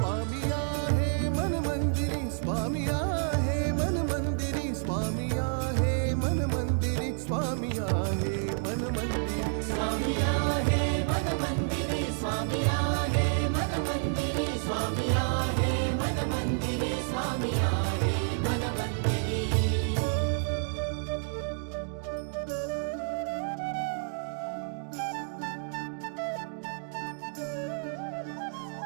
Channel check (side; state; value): left; silent; 58 dB below the other